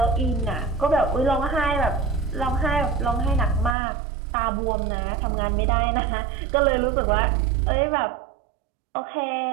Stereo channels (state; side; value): drops out; left; at 3.8 s